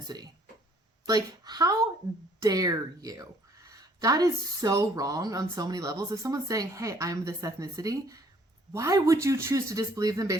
Like, how dare you? That is so wrong on so many levels. If someone's saying, hey, I'm this ethnicity, why would you choose to disbelieve them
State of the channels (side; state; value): both; normal; correlation 0.60